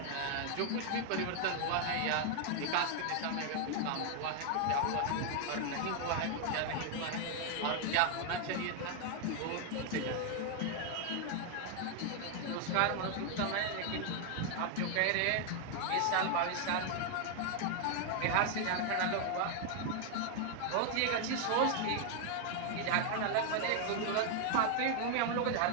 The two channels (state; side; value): different; both; correlation 0.00